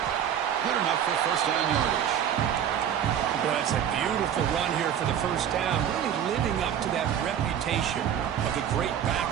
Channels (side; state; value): left; quieter; 9.4 dB